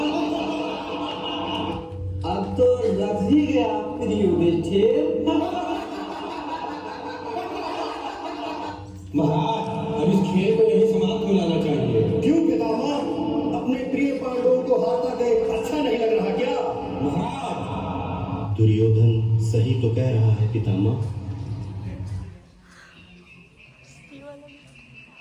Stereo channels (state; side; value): identical; both; correlation 1.00